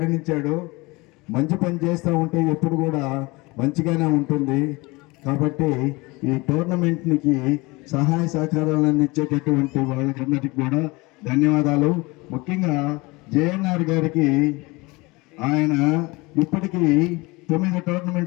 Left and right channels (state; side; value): quieter; right; 24.0 dB